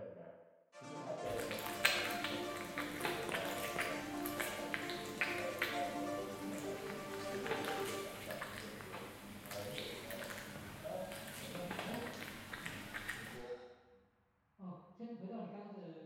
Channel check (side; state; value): both; identical; correlation 1.00